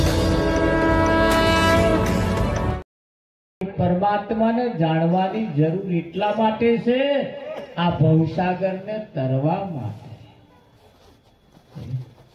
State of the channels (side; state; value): both; identical; correlation 1.00